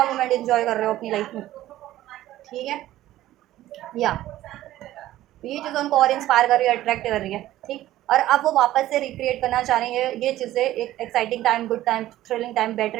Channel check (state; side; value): quieter; left; 14.5 dB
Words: मोमेंट इंजॉय कर रहे हो अपनी लाइफ में। ठीक है, या ये चीज़ें उनको और इंस्पायर कर रही है, अट्रैक्ट कर रही है। ठीक, और अब वो वापस से रिक्रिएट करना चाह रही है ये चीज़ें, एक exciting time, good time, thrilling time,